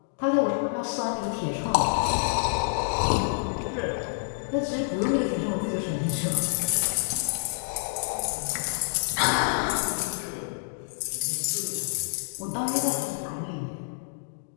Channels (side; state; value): right; silent; digital silence